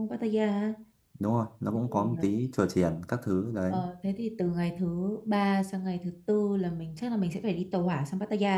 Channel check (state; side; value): identical; both; correlation 1.00